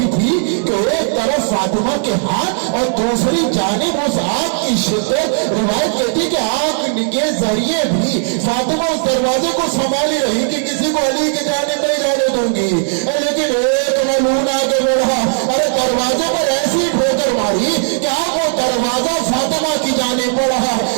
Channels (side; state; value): left; silent; digital silence